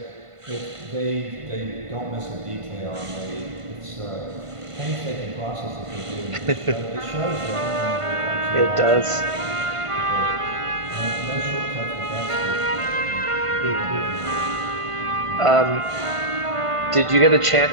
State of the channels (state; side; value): late; left; 1.5 ms